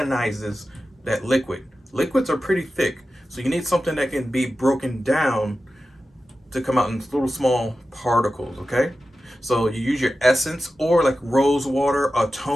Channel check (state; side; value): normal; both; correlation 0.93